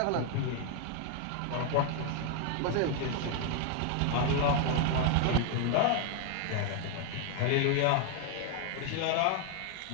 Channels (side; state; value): both; different; correlation 0.01